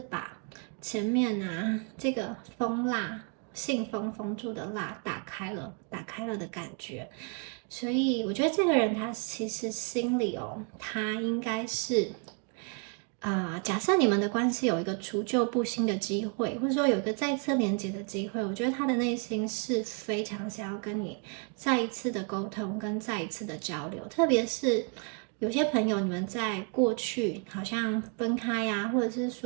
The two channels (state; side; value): quieter; left; 37.2 dB